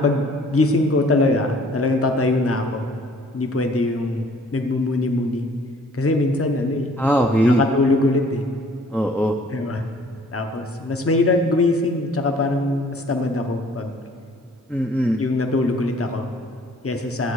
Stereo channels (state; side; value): normal; both; correlation 0.56